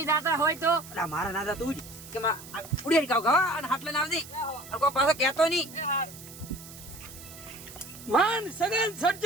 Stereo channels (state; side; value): noise; right; hiss, 16 dB below the sound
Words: જાતા હોય તો અલા મારા ના જા તું જ કે ઉડી કાવ ગા અને હાથ લઈને આવજે અને કોઈ પાછો કહેતો નહીં માન સગન